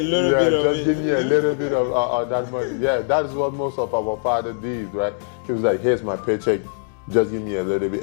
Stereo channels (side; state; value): right; silent; digital silence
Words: bit of it. Just give me a little bit of that money. Yeah, that is what most of our fathers did, right? He was like, here's my paycheck. Just give me a little bit